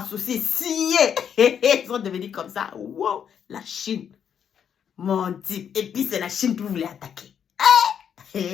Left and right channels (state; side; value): quieter; right; 8.2 dB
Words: signés. Ils sont devenus comme ça. Wow, la Chine. Mon Dieu. Et puis c'est la Chine qui voulait attaquer.